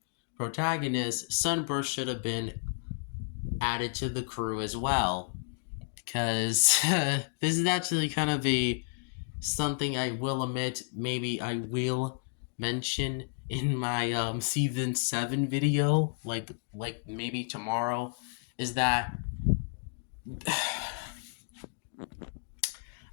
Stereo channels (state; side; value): silent; right; digital silence